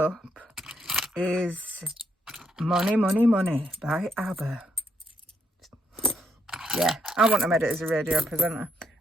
is Money, Money, Money by ABBA. Yeah, I want to make it as a radio presenter.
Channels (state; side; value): normal; both; correlation 0.76